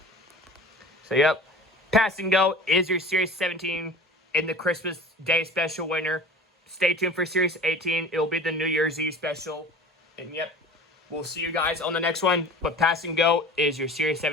So, yep. Pass and Go is your Series 17 in the Christmas Day special winner. Stay tuned for Series 18. It'll be the New Year's Eve special. And, yep, we'll see you guys on the next one. But Pass and Go is your Series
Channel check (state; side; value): normal; both; correlation 0.40